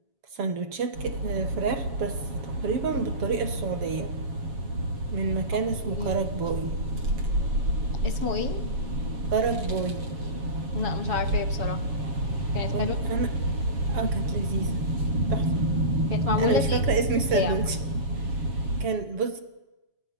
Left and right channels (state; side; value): late; left; 7.2 ms